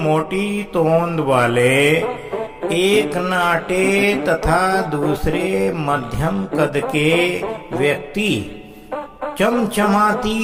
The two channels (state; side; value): identical; both; correlation 1.00